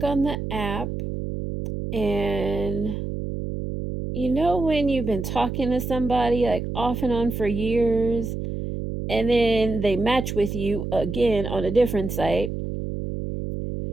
on the app, and you know when you've been talking to somebody like off and on for years, and then they match with you again on a different site,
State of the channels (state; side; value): noise; right; hum, 5 dB below the sound